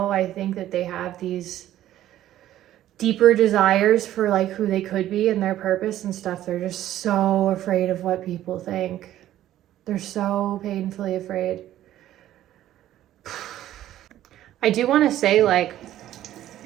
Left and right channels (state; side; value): quieter; left; 13.0 dB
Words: I think that they have these deeper desires for like who they could be and their purpose and stuff, they're just so afraid of what people think. They're so painfully afraid. I do want to say, like,